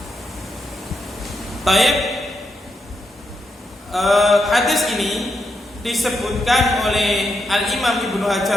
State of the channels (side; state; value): both; normal; correlation 0.82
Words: Taib, hadis ini disebutkan oleh Al-Imam Ibnu